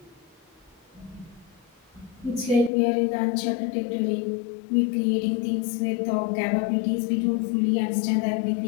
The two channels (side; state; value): right; drops out; at 2.7 s